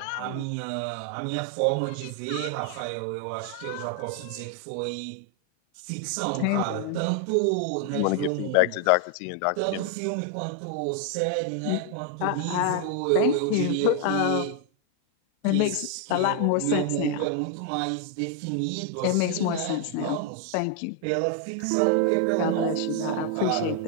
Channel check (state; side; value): different; both; correlation 0.00